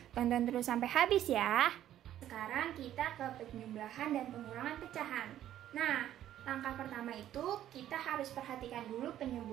Tonton terus sampai habis ya. Sekarang kita ke penjumlahan dan pengurangan pecahan. Nah, langkah pertama itu kita harus perhatikan dulu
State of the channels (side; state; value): left; quieter; 11.9 dB